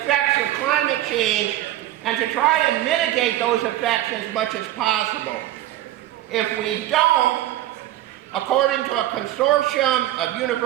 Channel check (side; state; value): left; quieter; 14.2 dB